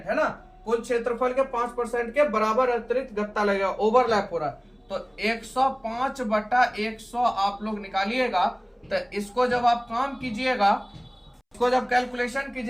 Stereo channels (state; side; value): identical; both; correlation 1.00